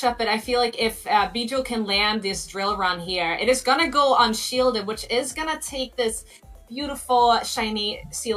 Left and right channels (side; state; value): both; identical; correlation 1.00